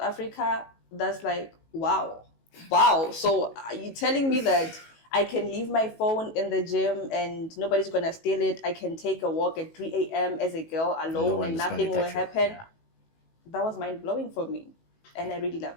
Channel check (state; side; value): late; right; 18 ms